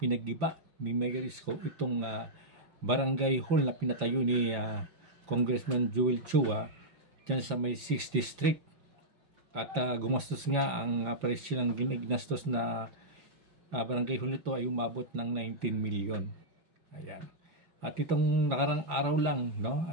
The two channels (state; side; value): late; left; 5.8 ms